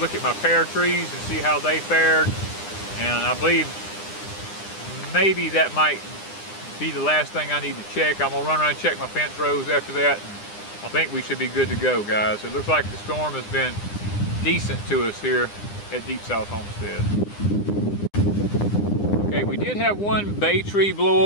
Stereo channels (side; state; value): right; late; 9.9 ms